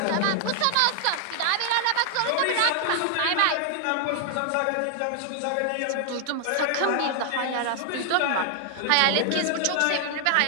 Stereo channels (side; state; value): both; different; correlation 0.00